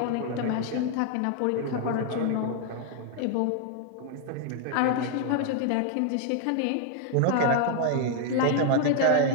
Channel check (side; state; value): both; different; correlation 0.00